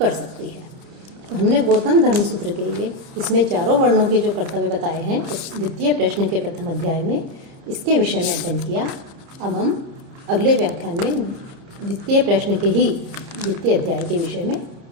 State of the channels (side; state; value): left; late; 30 ms